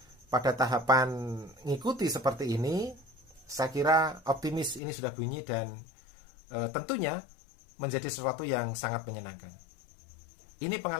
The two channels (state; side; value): drops out; right; at 4.8 s